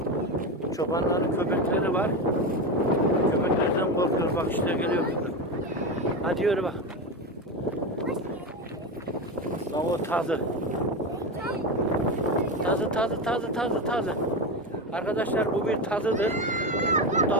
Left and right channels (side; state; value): both; normal; correlation 0.18